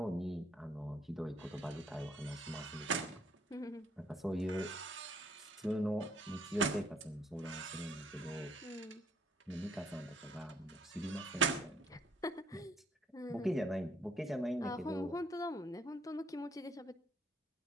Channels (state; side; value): normal; both; correlation 0.65